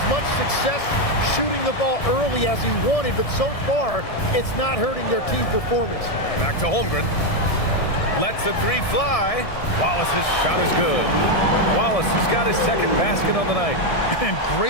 much success shooting the ball early as he wanted, but so far, it's not hurting their team performance. Back to Holmgren. Lets the three fly. Wallace's shot is good. Wallace has got his second basket on the night. And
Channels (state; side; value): late; right; 1.6 ms